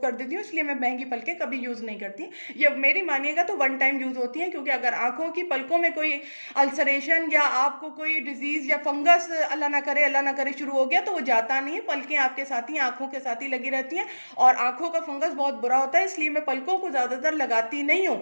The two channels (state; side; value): inverted; both; correlation -1.00